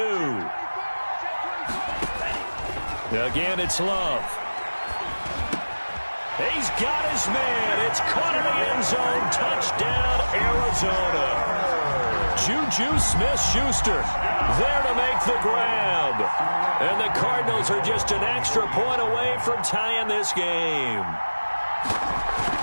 Again, it's Love. He's got his man. It's caught in the end zone. Touchdown, Arizona. Juju Smith-Schuster there to make the grab. And the Cardinals are just an extra point away from tying this game.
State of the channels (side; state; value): both; inverted; correlation -1.00